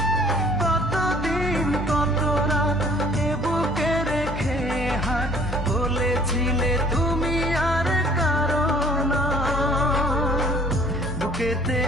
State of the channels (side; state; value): both; normal; correlation 0.54